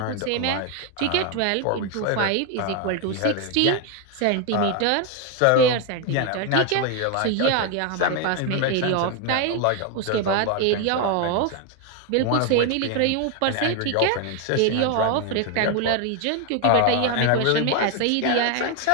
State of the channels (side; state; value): both; different; correlation 0.01